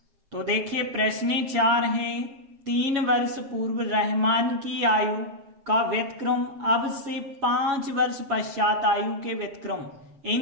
तो देखिए, प्रश्न 4 है, 3 वर्ष पूर्व रहमान की आयु का व्यतिक्रम अब से 5 वर्ष पश्चात आयु के व्यतिक्रम,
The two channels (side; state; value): left; late; 7.3 ms